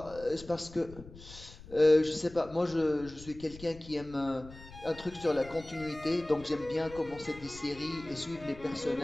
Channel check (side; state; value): left; noise; rumble, 18 dB below the sound